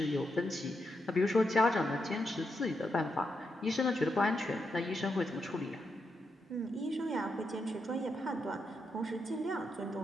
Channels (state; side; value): normal; both; correlation 0.83